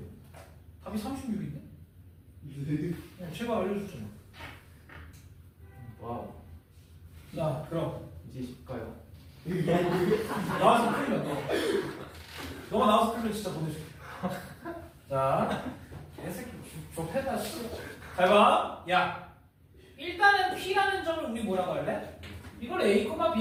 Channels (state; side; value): identical; both; correlation 1.00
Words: 답이 36인데? 제가 알려줬잖아. 와우. 자, 그럼 이제 쉽까요? 나와서 풀면 너. 너가 나와서 풀면 진짜 보내줄게. 자, 개새끼 좁혀다 씨. 잘 봐. 야, 일단은 P라는 점을 우리 뭐라고 할래? 이걸 A,